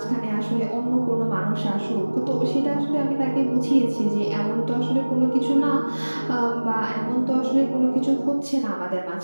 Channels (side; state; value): both; inverted; correlation -1.00